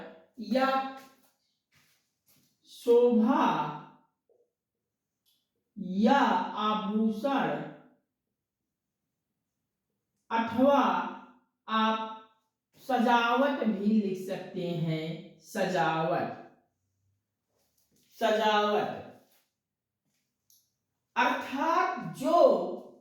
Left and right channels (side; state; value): both; identical; correlation 1.00